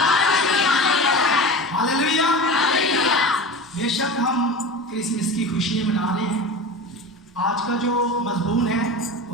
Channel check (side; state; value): both; normal; correlation 0.31